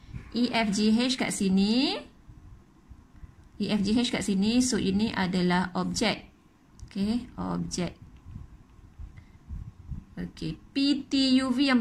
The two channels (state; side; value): identical; both; correlation 1.00